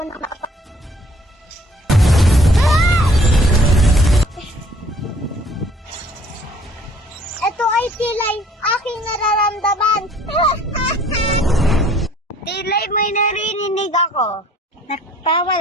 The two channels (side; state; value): both; normal; correlation 0.57